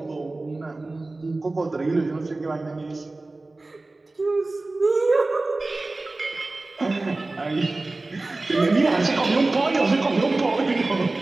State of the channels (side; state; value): left; quieter; 3.1 dB